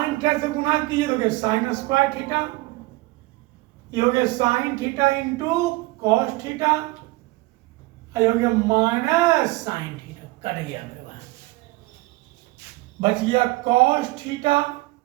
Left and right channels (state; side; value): quieter; left; 21.3 dB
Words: थीटा से गुणा कीजिए तो हो गया साइन स्क्वायर थीटा, ये हो गया sine theta into cos theta, ये हो गया माइनस साइन थीटा, कट गया मेरे भाई, बच गया कॉस थीटा।